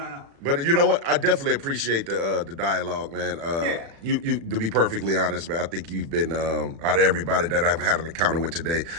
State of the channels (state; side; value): late; left; 36 ms